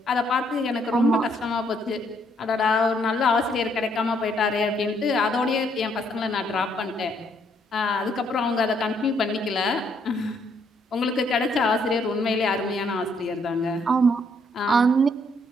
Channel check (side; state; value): both; normal; correlation 0.70